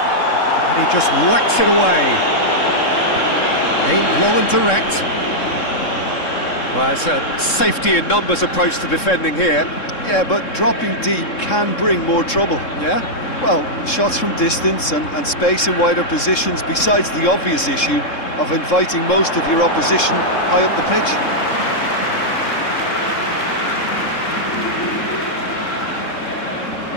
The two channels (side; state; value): right; late; 3.7 ms